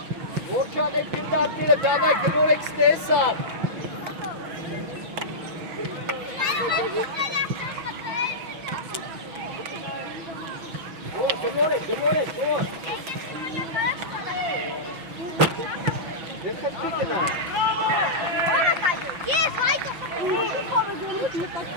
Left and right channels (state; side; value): late; left; 6.1 ms